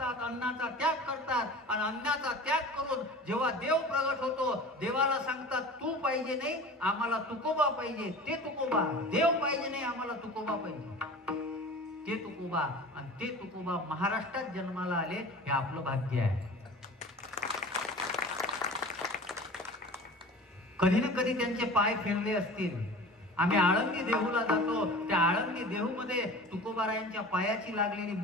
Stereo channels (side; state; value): both; normal; correlation 0.38